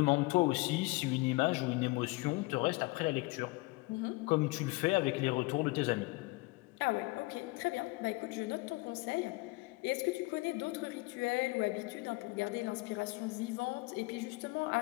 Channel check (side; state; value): right; quieter; 23.8 dB